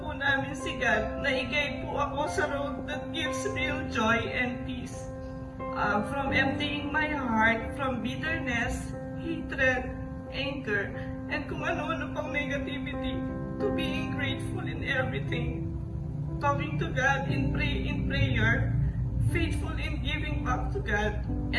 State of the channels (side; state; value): both; identical; correlation 1.00